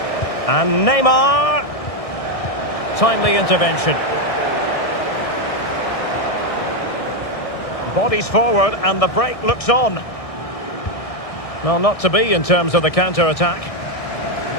And Neymar. Timely intervention. Bodies forward and the break looks on. Well, not to be in terms of the counter-attack.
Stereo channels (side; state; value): right; late; 1.6 ms